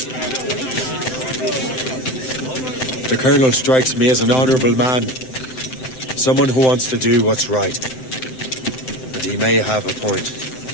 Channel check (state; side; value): late; right; 7.8 ms